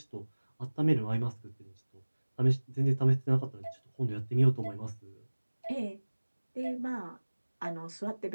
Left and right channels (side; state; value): both; inverted; correlation -1.00